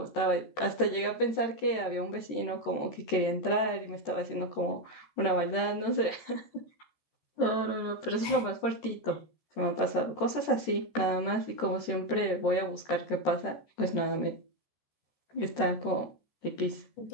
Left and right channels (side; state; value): right; late; 13 ms